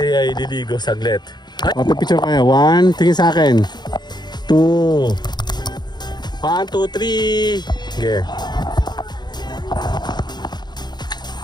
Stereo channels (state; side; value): late; right; 0.21 ms